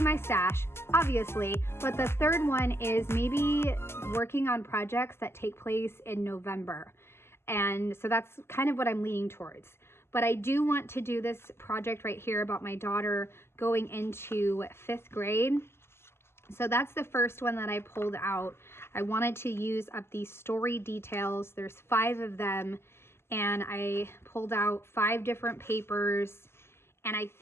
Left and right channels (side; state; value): right; late; 0.12 ms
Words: my stash, obviously, but the third one is maybe working on projects that take place in November. And so that's kind of what I'm leaning towards. But I do want to do this project right here about my daughter going into 5th grade. So that's the first one that I pulled out. I wanted to use up these story details. There's 5 of them, and I pulled out 5 different papers. And I